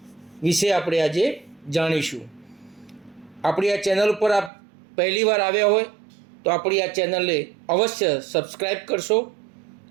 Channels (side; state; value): left; drops out; at 4.5 s